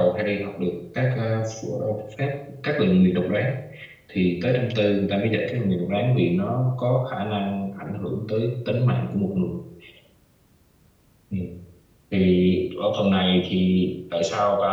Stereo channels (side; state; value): both; identical; correlation 1.00